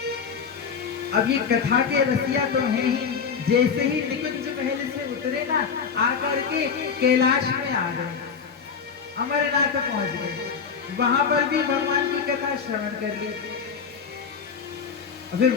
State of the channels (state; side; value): quieter; right; 6.2 dB